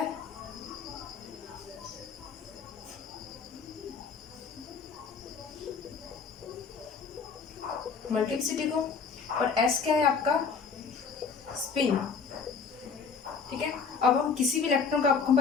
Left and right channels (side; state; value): right; quieter; 5.5 dB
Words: मल्टीप्लिसिटी को, और s क्या है आपका? स्पिन। ठीक है, अब हम किसी भी इलेक्ट्रॉन का, आपको